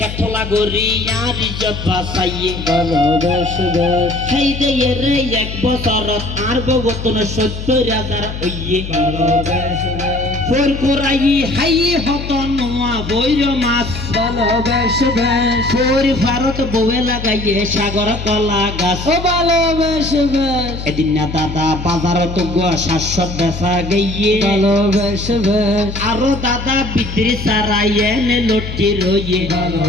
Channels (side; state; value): left; noise; hum, 8 dB below the sound